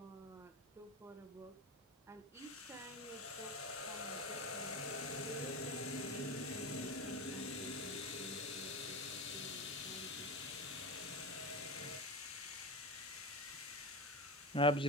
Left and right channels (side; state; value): both; normal; correlation 0.22